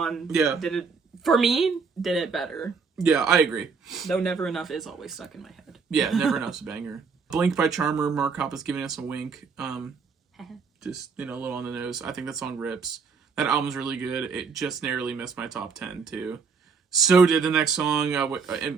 did it, for me, did it better. Yeah, I agree. Though Never Enough is always stuck in my head. Yeah, Never Enough's a banger. Blink by Charmer, Mark Hoppus giving us a wink. Just, you know, a little on the nose. I think that song rips. That album's really good. It just narrowly missed my top 10, too. So did the next song,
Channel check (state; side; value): quieter; left; 5.3 dB